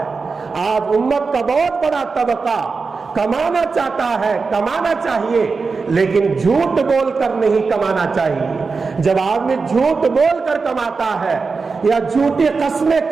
آج امت کا بہت بڑا طبقہ کمانا چاہتا ہے، کمانا چاہیے، لیکن جھوٹ بول کر نہیں کمانا چاہیے۔ جب آدمی جھوٹ بول کر کماتا ہے یا جھوٹی قسمیں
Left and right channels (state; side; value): quieter; left; 4.6 dB